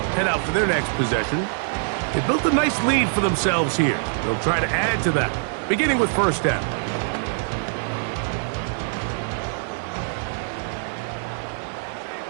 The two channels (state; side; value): silent; left; 63 dB below the other